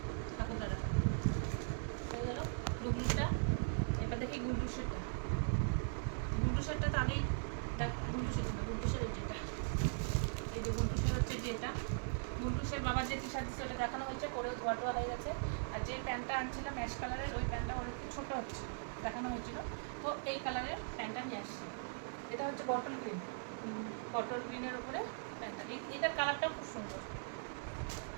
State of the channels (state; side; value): silent; left; digital silence